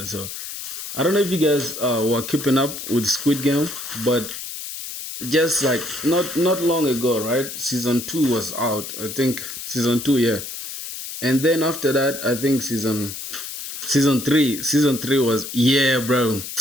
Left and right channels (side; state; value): left; noise; hiss, 8 dB below the sound